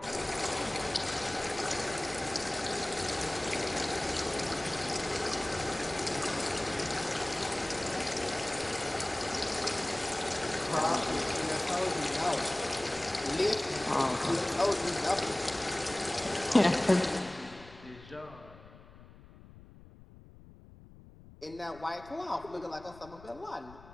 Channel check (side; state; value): left; noise; rumble, 20 dB below the sound